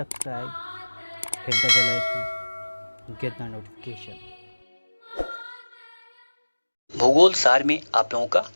hit the bell icon, get the notification. भूगोल सार में आप लोगों का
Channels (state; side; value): inverted; both; correlation -1.00